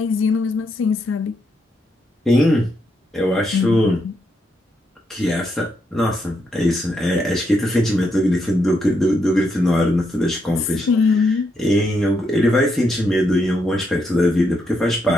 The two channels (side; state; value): both; normal; correlation 0.79